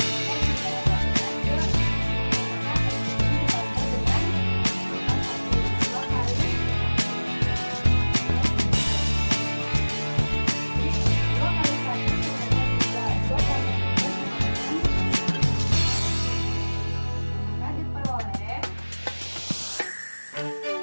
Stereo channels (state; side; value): inverted; both; correlation -1.00